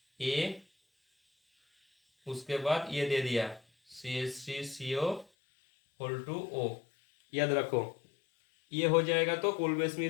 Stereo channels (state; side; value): drops out; right; at 5.2 s